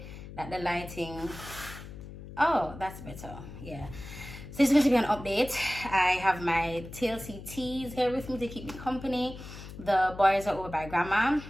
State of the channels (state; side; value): noise; left; hum, 13 dB below the sound